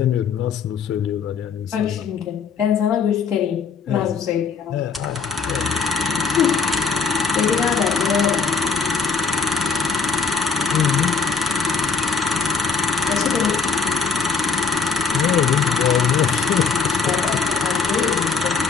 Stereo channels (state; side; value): quieter; right; 5.2 dB